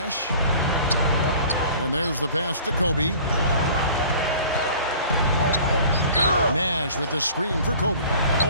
And there's the pass to Kobe. Nash with the screen for Kobe.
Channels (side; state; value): both; inverted; correlation -0.46